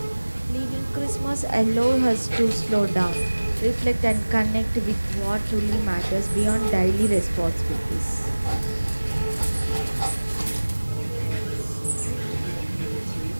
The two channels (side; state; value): both; inverted; correlation -1.00